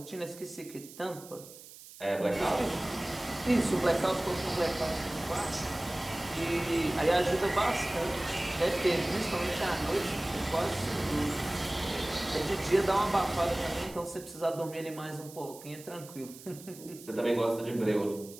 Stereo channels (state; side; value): noise; right; hiss, 18 dB below the sound